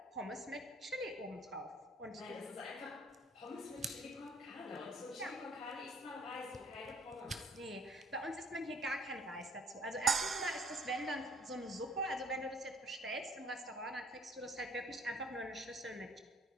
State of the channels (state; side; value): normal; both; correlation 0.56